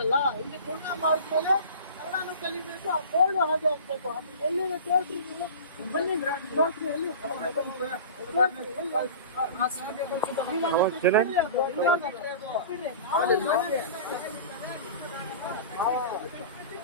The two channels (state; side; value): inverted; both; correlation -0.37